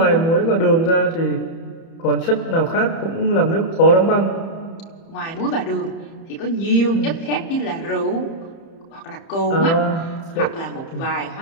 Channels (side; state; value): right; late; 30 ms